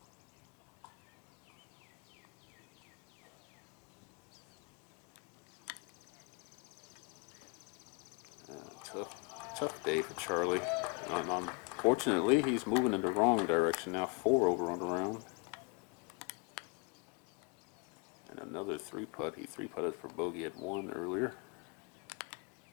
Tough day for Charlie. Unfortunately, he's moving in the wrong direction now. 4 over on the round. And another 3-putt. He 3-putted for bogey at 1 earlier,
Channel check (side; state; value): right; quieter; 32.3 dB